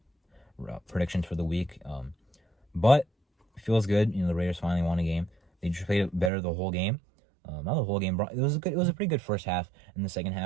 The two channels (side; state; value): left; drops out; at 6.3 s